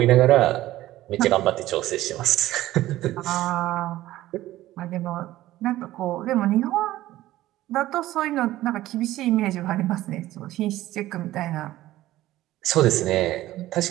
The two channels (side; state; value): left; quieter; 15.4 dB